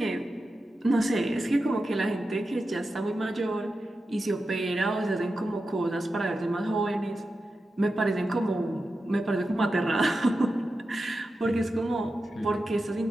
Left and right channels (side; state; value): both; normal; correlation 0.91